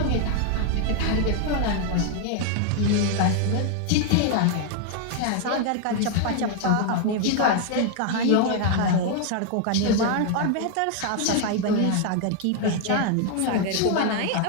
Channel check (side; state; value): both; different; correlation 0.00